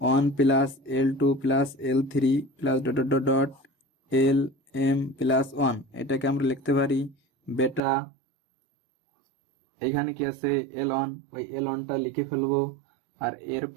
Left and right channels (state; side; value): drops out; left; at 7.8 s